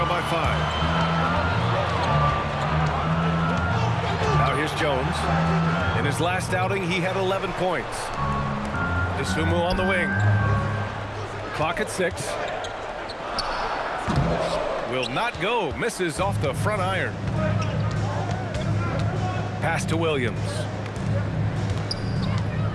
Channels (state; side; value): identical; both; correlation 1.00